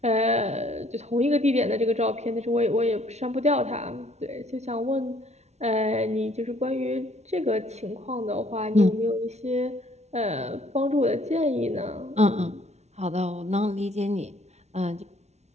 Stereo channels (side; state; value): left; late; 0.32 ms